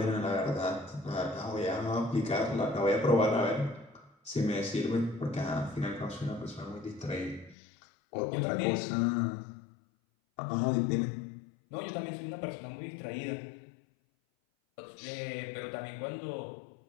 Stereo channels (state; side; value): drops out; right; at 7.6 s